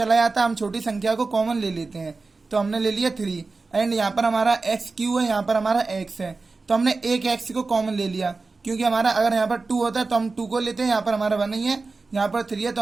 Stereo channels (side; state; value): left; quieter; 3.9 dB